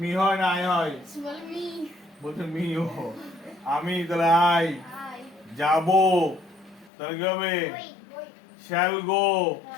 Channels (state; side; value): drops out; right; at 6.9 s